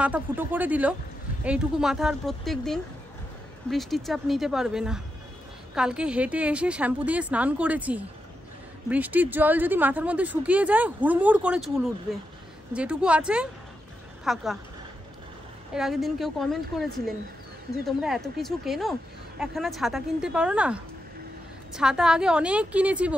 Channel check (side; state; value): both; normal; correlation 0.86